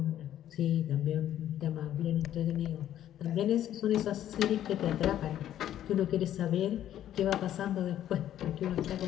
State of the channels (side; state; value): right; quieter; 11.6 dB